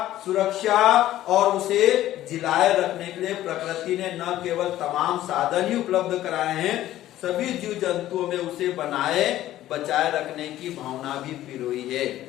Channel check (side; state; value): right; quieter; 13.9 dB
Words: सुरक्षा और उसे जिलाए रखने के लिए प्रकृति ने न केवल तमाम साधन ही उपलब्ध कराए हैं, सभी जीव जंतुओं में उसे बनाए बचाए रखने की भावना भी पिरोई है।